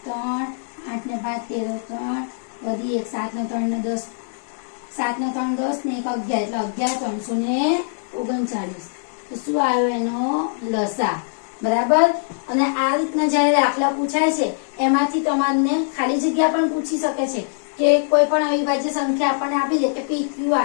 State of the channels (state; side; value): silent; right; digital silence